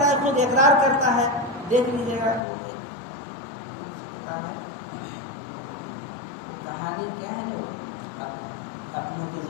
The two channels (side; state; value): right; drops out; at 2.4 s